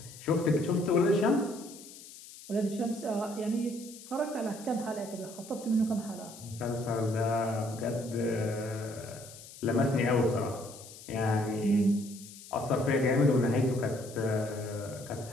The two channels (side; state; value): left; noise; hiss, 17 dB below the sound